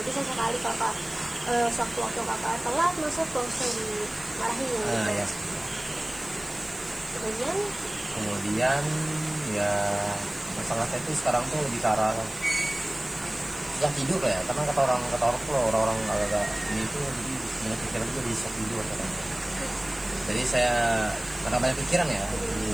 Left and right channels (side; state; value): right; noise; hiss, 18 dB below the sound